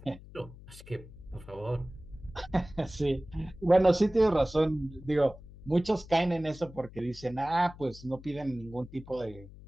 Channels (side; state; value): left; noise; hum, 18 dB below the sound